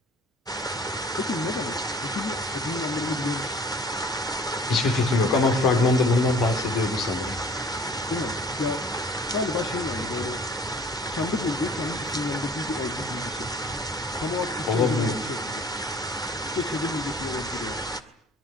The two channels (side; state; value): both; normal; correlation 0.51